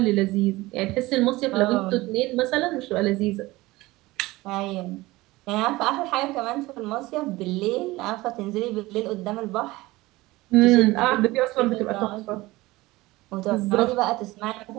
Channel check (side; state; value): left; quieter; 19.7 dB